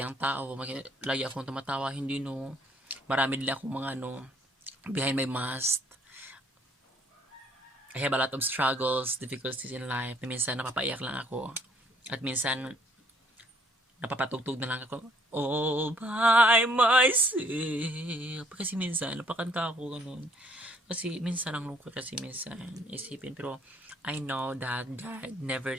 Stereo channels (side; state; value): both; normal; correlation 0.63